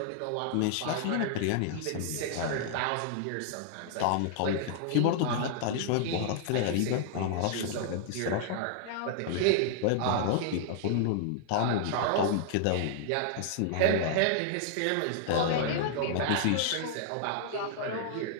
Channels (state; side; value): different; both; correlation -0.01